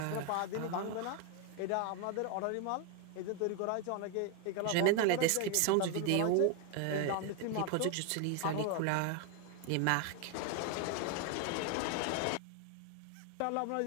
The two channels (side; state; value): both; different; correlation 0.01